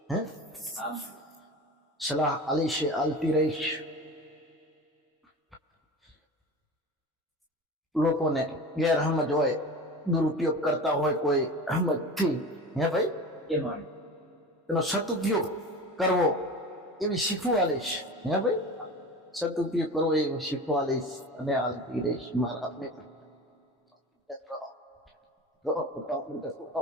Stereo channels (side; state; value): both; normal; correlation 0.33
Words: હે આમ સલાહ આલી છે, આલતી રહીશ. લોકોને ગેરસમજ હોય, દુરુપયોગ કરતા હોય કોઈ સમજથી, હે ભાઈ, કે મારે એનો સદુપયોગ કરવો એવી શીખવા લઈશ. હે ભાઈ, સદુપયોગ કરવો એવું શીખવા લઈશ અને આલતી રહીશ મારા ને.